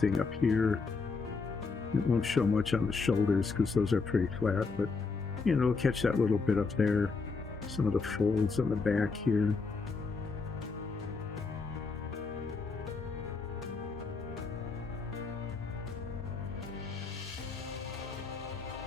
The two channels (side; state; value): right; quieter; 4.5 dB